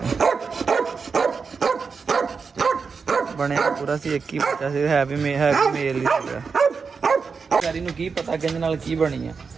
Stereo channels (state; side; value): quieter; left; 5.2 dB